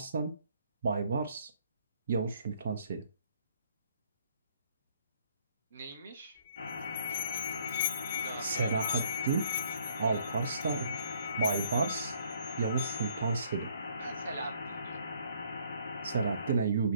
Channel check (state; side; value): inverted; both; correlation -0.64